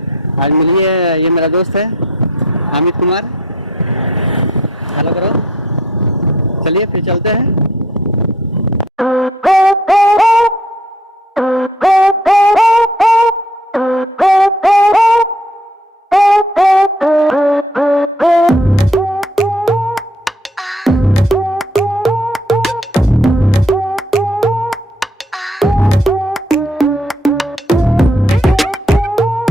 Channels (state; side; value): normal; both; correlation 0.60